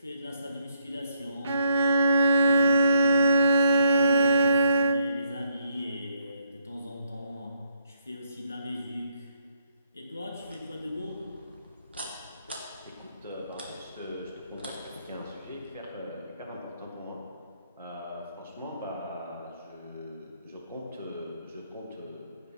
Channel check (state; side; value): inverted; both; correlation -0.74